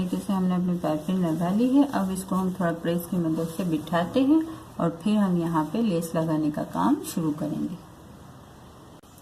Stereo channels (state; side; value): identical; both; correlation 1.00